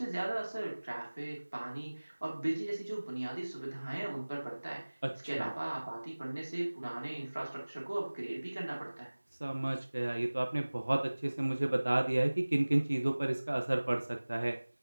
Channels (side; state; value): both; inverted; correlation -1.00